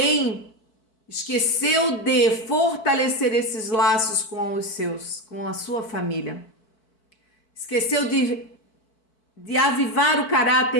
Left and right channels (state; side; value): late; right; 4.5 ms